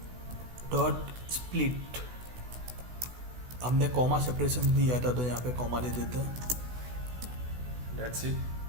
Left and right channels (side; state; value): left; late; 16 ms